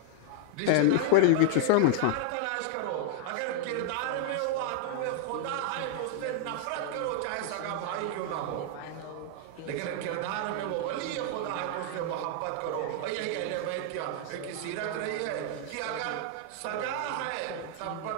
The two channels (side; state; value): both; different; correlation 0.00